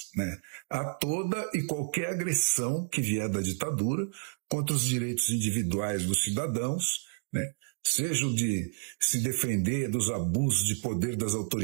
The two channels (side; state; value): left; silent; digital silence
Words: né? A toda e qualquer agressão que vier da ditadura contra os direitos individuais dos cidadãos, né? Seja o de se defender dos abusos de poder das